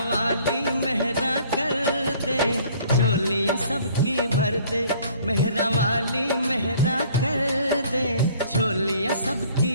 वाली मेहरा कर दे, झोलियां सबकी भर दे, मेहरा वाली मेहरा कर दे, झोलियां सबकी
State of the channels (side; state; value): both; inverted; correlation -0.55